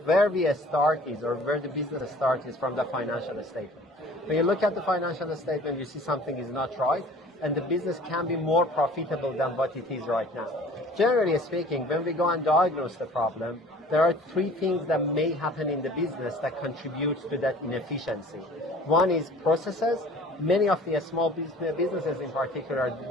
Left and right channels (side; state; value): both; normal; correlation 0.48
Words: Where we start is, or where the business starts, is from the financial statement. When you look at the financial statement, you see something is not right, and the business can be more profitable than what it is right now. Generally speaking, when we go and diagnose the problem, there are three things that may happen in the business that contributes to that inefficiency. One is processes. Many of the small businesses in particular